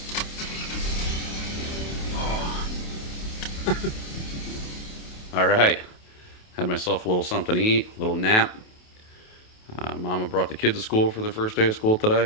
Oh. All right, had myself a little something to eat, a little nap. Mama brought the kids to school for their first day of school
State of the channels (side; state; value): right; late; 28 ms